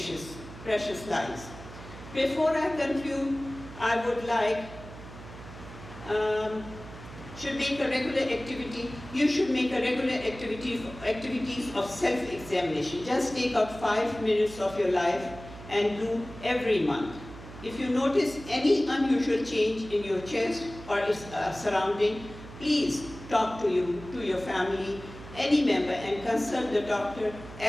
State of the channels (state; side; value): noise; right; hum, 15 dB below the sound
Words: lives. Before I conclude, I would like should make a regular activity. You should make a regular activities of self-examination. Just take out 5 minutes of your life and do every month. If you notice any unusual change in your chest or its surrounding, please talk to your family, any member, and consult the doctor